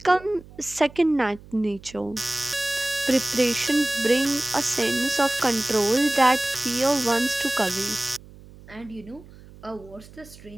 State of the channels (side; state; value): right; noise; hum, 21 dB below the sound